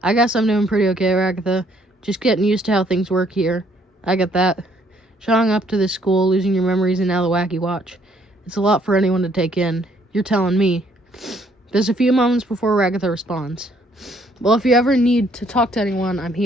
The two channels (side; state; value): both; normal; correlation 0.66